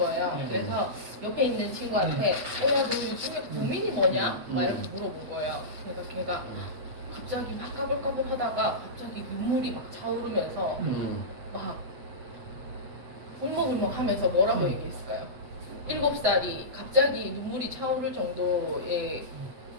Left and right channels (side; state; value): left; late; 8.1 ms